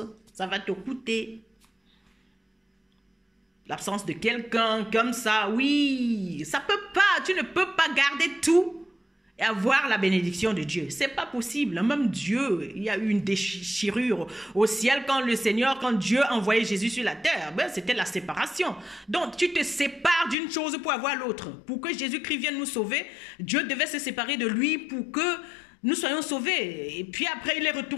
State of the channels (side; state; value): right; drops out; at 20.4 s